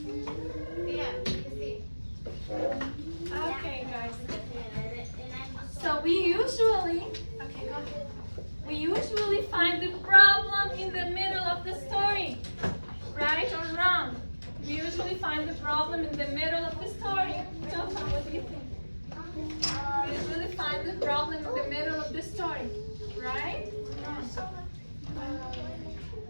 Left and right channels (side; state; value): both; inverted; correlation -1.00